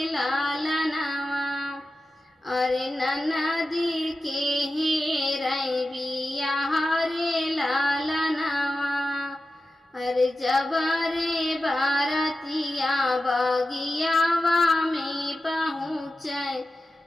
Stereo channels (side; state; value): both; normal; correlation 0.93